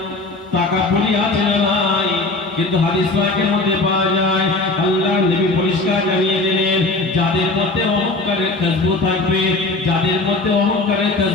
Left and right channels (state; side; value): quieter; right; 3.3 dB